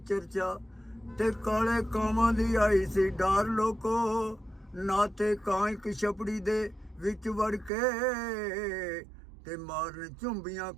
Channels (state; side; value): drops out; left; at 7.7 s